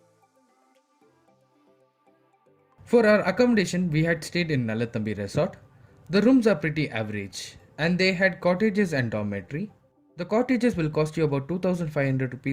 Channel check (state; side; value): identical; both; correlation 1.00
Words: For our accommodation, we had stayed in Nalathambi Resort. The rooms are pretty average and they had cottages and dormitory. The cottages will cost you about 2500